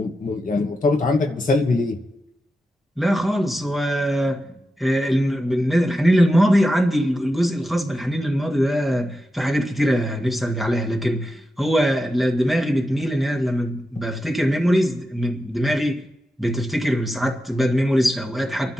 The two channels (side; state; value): both; normal; correlation 0.89